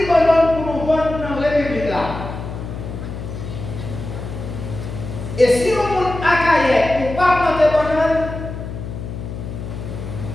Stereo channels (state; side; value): noise; left; hum, 8 dB below the sound